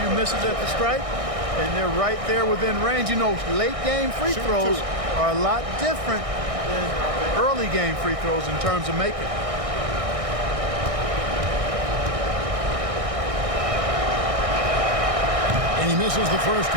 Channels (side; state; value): left; late; 1.6 ms